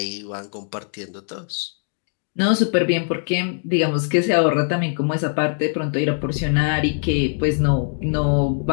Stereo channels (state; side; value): silent; right; 64 dB below the other